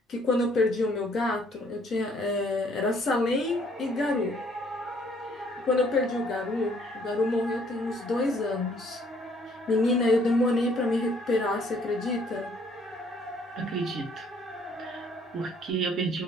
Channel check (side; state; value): both; normal; correlation 0.62